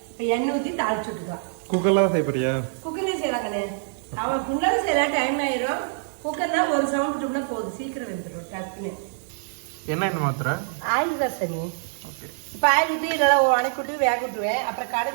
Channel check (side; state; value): left; silent; digital silence